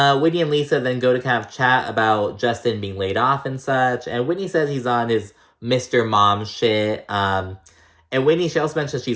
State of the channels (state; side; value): identical; both; correlation 1.00